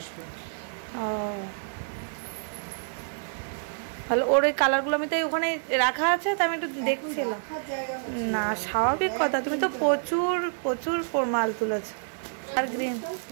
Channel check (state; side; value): silent; left; digital silence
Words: ও ভালো। ওর ওই কালারগুলো আমি তো ওখানে রাখা আছে, তো আমি একটু দেখছিলাম। না স্বাভাবিক কথা, তুমি তো প্রচুর প্রচুর মাল তুলেছো। আর গ্রিন